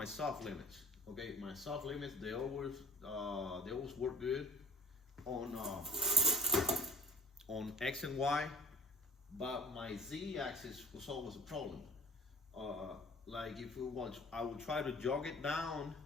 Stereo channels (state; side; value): normal; both; correlation 0.48